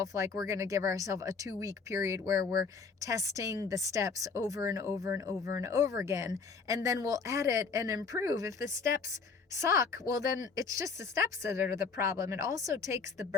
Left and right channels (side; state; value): right; quieter; 4.9 dB